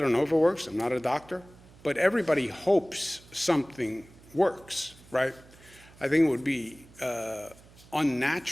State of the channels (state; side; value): noise; right; hum, 24 dB below the sound